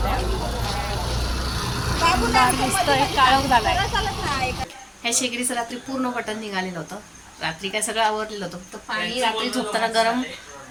आहे. दिसतोय काळोख झालाय. ह्या शेगडीचं रात्री पूर्ण बटन निघालेलं होतं. रात्री काय सगळं आवरलेलं होतं, तर पाणी रात्री झोपताना गरम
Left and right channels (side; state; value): both; identical; correlation 1.00